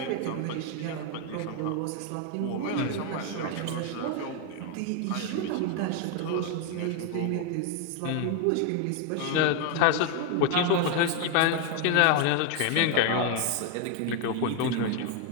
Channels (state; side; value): different; both; correlation 0.01